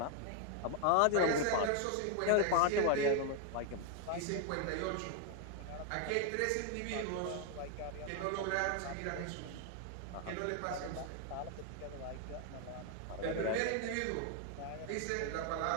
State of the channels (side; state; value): both; different; correlation 0.00